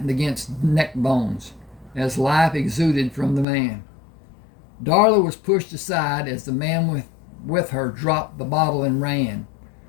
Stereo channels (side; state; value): right; drops out; at 3.5 s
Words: against neck bones as life exuded from the man. Darla was pushed aside as the man with her dropped the bottle and ran.